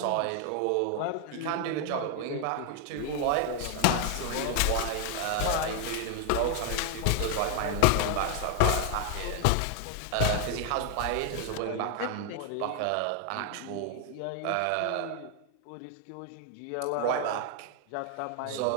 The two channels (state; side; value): different; both; correlation 0.00